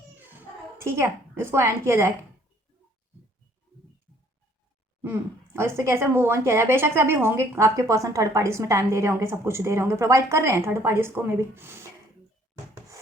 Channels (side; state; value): both; normal; correlation 0.61